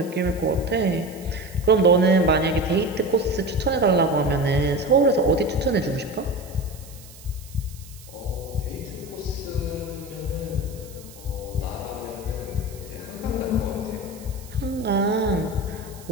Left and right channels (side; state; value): right; noise; hiss, 20 dB below the sound